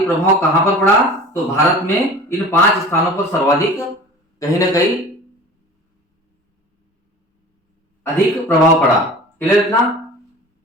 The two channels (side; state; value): both; normal; correlation 0.40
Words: प्रभाव कहां पर पड़ा, तो भारत में इन 5 स्थानों पर सर्वाधिक कहीं ना कहीं अधिक प्रभाव पड़ा। क्लियर इतना?